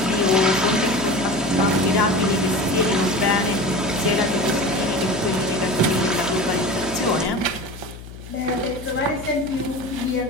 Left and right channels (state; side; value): noise; left; hum, 14 dB below the sound